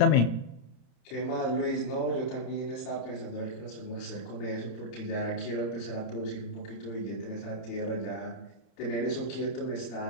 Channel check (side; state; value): right; late; 31 ms